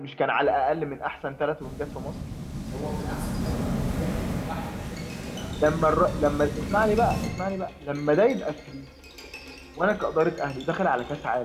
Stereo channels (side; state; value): both; identical; correlation 1.00